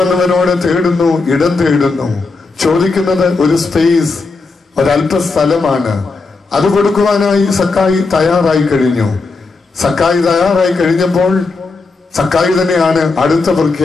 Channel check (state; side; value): quieter; right; 3.9 dB